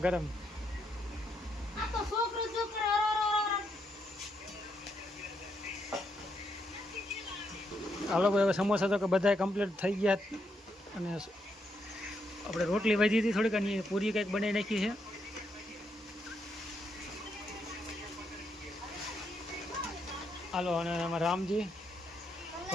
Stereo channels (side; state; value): both; normal; correlation 0.79